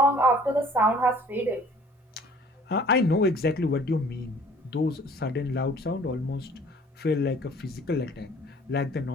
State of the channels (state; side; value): normal; both; correlation 0.52